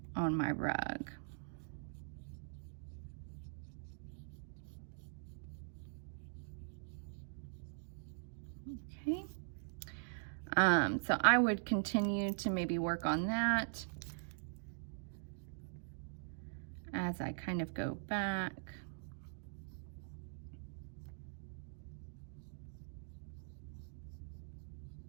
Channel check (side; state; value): left; silent; digital silence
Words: on my rug. Okay. So I would continue to maybe work on that as I kind of go back.